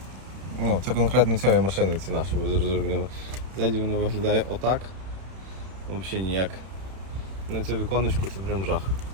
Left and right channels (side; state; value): left; late; 31 ms